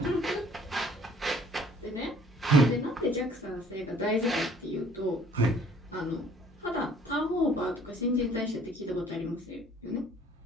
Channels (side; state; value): both; normal; correlation 0.57